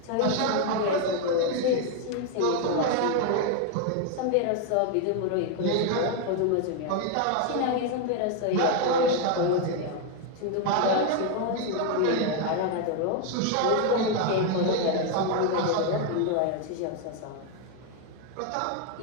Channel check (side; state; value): both; different; correlation 0.01